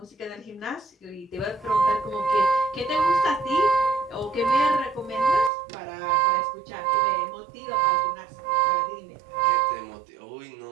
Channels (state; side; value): drops out; left; at 5.5 s